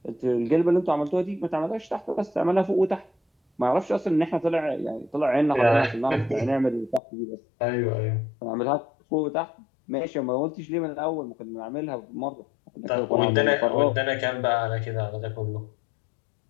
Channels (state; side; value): drops out; right; at 7.0 s